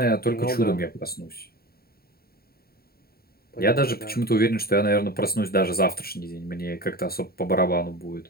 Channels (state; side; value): late; right; 0.44 ms